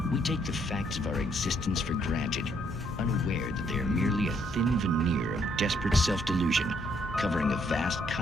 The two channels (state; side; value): normal; both; correlation 0.70